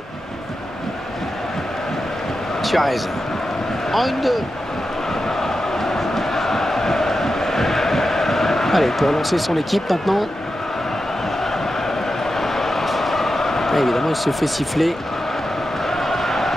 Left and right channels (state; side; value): normal; both; correlation 0.90